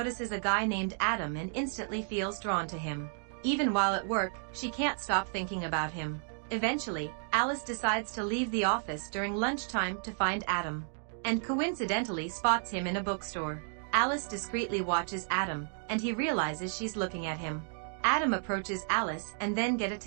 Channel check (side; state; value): left; silent; 56 dB below the other